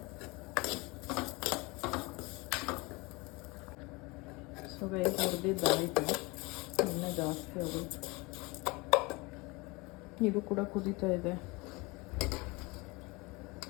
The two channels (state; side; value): quieter; right; 25.4 dB